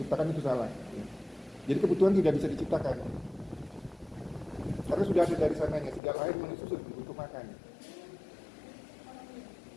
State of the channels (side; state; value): right; drops out; at 6.0 s